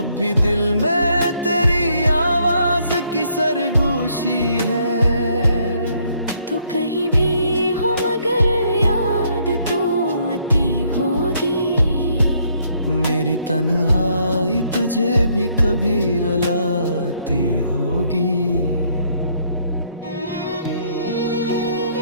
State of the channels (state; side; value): inverted; both; correlation -0.69